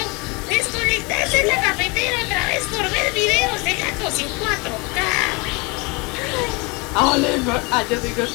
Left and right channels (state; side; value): quieter; right; 28.1 dB